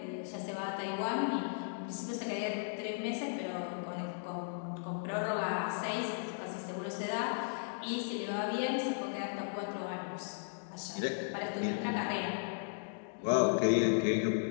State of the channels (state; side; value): silent; right; digital silence